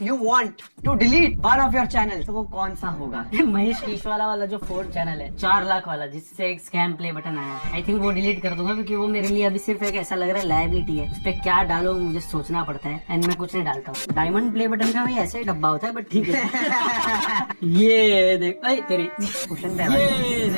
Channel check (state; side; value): inverted; both; correlation -1.00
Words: you want to delete one of your channel, तो वो कौन सा होगा? महेश कीशवाला वाला जो 4th चैनल है, 4 लाख वाला, जिससे एक स्कैम प्ले बटन आया है, आई थिंक वो डिलीट कर दूंगा, क्योंकि वो मेरे लिए अभी सिर्फ एक ऐसा लग रहा है लायबिलिटी है। उस पर क्या डालो मुझे सोचना पड़ता है, एंड मैं कुछ नहीं डालता हूँ। डायमंड प्ले बटन का भी ऐसे ही डब्बा होता है, बट ठीक है। ये देख तेरी क्वेश्चन ये